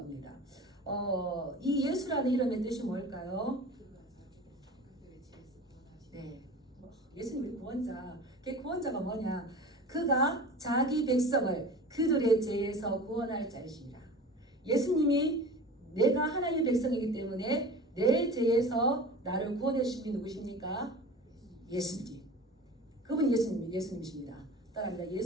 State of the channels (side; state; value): both; normal; correlation 0.37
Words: 이 예수라는 이름의 뜻이 뭘까요? 네, 예수님이 구원자. 그 구원자가 뭐냐? 그가 자기 백성을 그들의 죄에서 구원할 자이십니다. 예수님이 내가 하나님의 백성이기 때문에 내 죄에서 나를 구원해 주신 분이 누구십니까? 예수님. 그분이 예수님이십니다. 따라합니다.